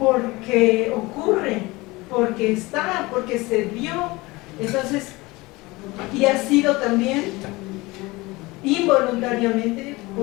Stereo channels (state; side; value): quieter; right; 22.1 dB